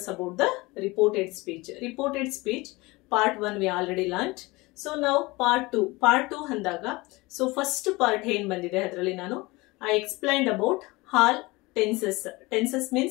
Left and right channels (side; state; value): right; quieter; 22.8 dB